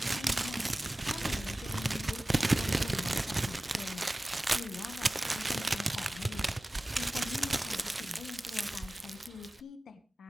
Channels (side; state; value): both; normal; correlation 0.97